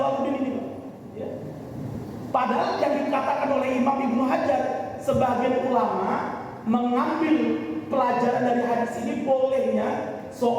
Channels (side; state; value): both; identical; correlation 1.00